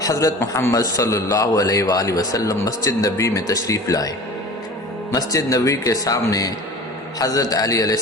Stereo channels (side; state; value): both; normal; correlation 0.39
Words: حضرت محمد صلی اللہ علیہ وآلہ وسلم مسجد نبی میں تشریف لائے۔ مسجد نبی کے سامنے حضرت علی علیہ